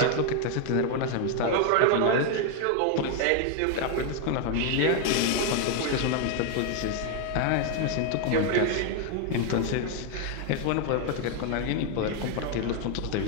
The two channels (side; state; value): both; different; correlation 0.01